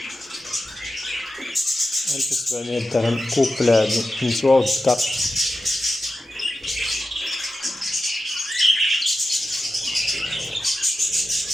1700 درهم كوبل هادو النسوة والذكر.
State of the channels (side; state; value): both; normal; correlation 0.91